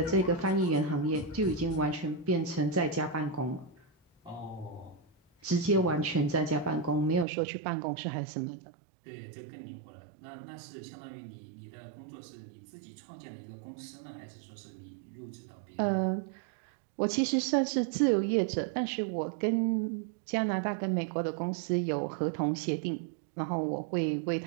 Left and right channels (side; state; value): left; drops out; at 7.2 s